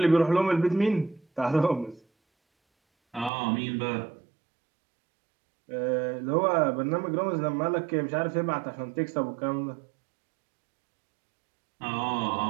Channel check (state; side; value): drops out; left; at 3.3 s